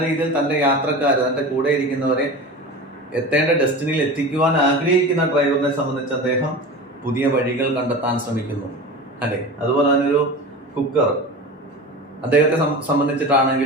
രീതിയിൽ തന്റെ യാത്രക്കാർ, തന്റെ കൂടെ ഇരിക്കുന്നവരെ എത്തേണ്ട ഡെസ്റ്റിനിയിൽ എത്തിക്കുവാൻ ആഗ്രഹിക്കുന്ന ഡ്രൈവറിനെ സംബന്ധിച്ച് അദ്ദേഹം പുതിയ വഴികൾ കണ്ടെത്താൻ ശ്രമിക്കുന്നു, അല്ലെ. അതുപോലെ തന്നെ ഒരു കുക്കർ, അദ്ദേഹത്തെ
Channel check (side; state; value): both; normal; correlation 0.31